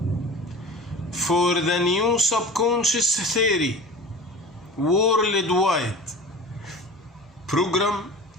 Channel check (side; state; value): both; normal; correlation 0.36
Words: for the new subconscious theory worldwide, program